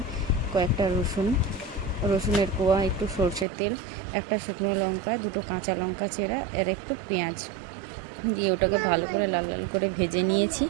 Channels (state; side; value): drops out; left; at 3.5 s